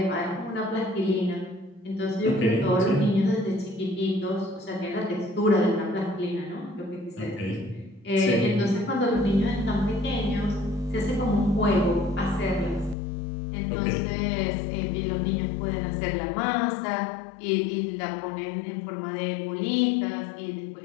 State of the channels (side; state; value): right; drops out; at 13.0 s